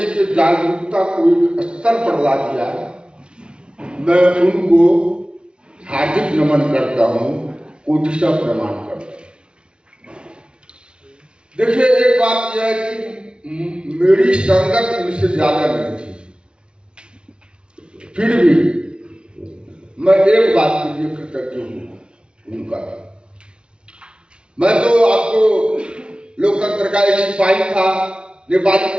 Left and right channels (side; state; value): left; late; 0.056 ms